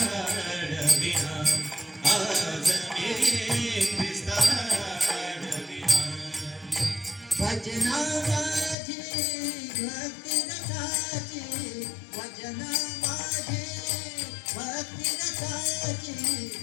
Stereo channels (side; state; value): right; drops out; at 8.8 s